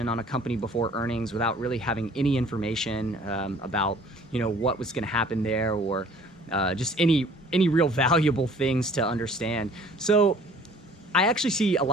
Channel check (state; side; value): normal; both; correlation 0.53